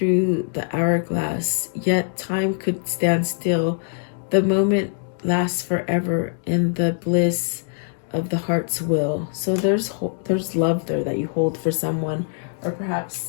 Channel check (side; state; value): right; silent; digital silence